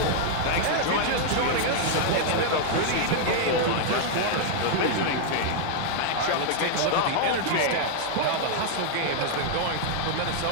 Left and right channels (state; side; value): different; both; correlation 0.00